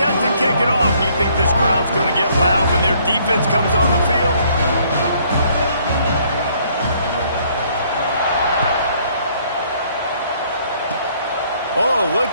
to kick it off. You think this crowd's going to get loud when their defense comes on the field? Oh,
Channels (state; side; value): inverted; both; correlation -0.64